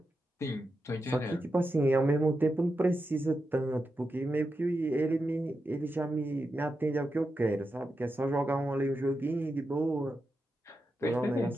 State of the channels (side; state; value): both; normal; correlation 0.88